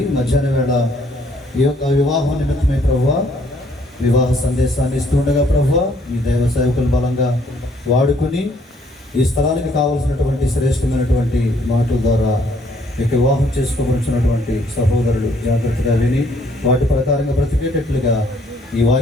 మధ్యాహ్న వేళ ఈ యొక్క వివాహం నిమిత్తమై ప్రభువా వివాహ సందేశాన్ని ఇస్తుండగా ప్రభువా మీ దైవ సేవకులు బలంగా వాడుకొని ఈ స్థలానికి కావలసినటువంటి శ్రేష్టమైనటువంటి మాటల ద్వారా మీకు వివాహం చేసుకోవలసినటువంటి సహోదరులు జాగ్రత్తగా విని వాటి ప్రకారంగా బ్రతికేటట్లుగా ఈ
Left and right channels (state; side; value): normal; both; correlation 0.65